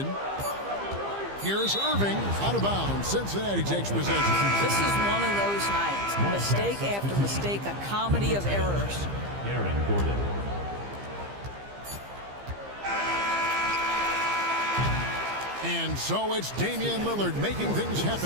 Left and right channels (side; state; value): left; late; 15 ms